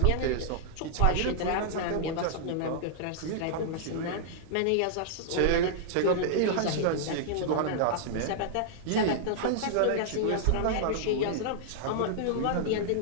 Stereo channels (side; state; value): both; different; correlation -0.01